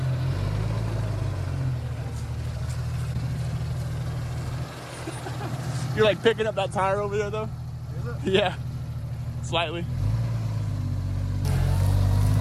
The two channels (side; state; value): both; identical; correlation 1.00